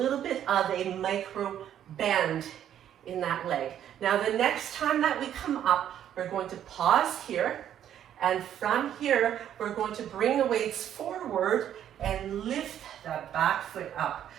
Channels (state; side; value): quieter; left; 10.4 dB